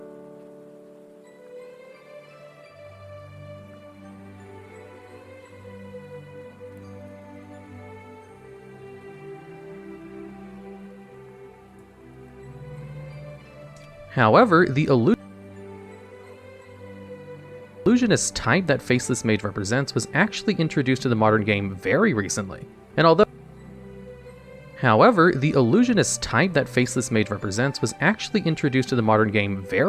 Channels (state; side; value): identical; both; correlation 1.00